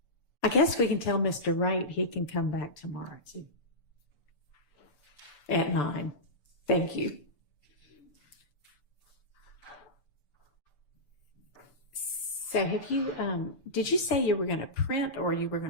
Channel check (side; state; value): right; late; 6.9 ms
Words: I guess we can tell Mr. Wright he can come back tomorrow too. At 9. Thank you. So have you, did you say you were going to print or you were